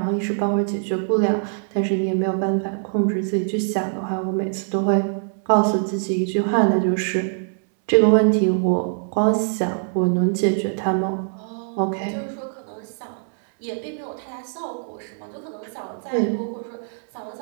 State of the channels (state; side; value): silent; left; digital silence